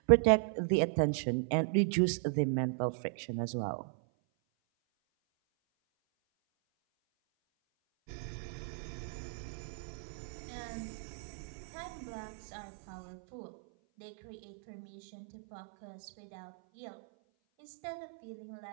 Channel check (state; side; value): silent; left; 53 dB below the other